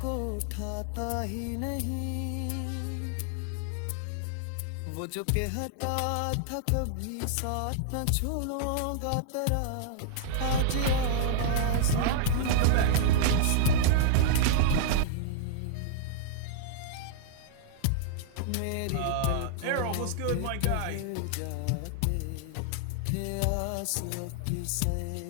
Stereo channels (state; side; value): different; both; correlation -0.01